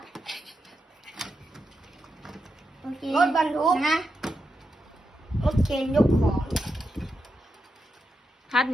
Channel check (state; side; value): normal; both; correlation 0.86